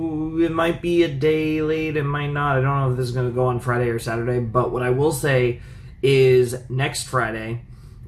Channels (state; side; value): identical; both; correlation 1.00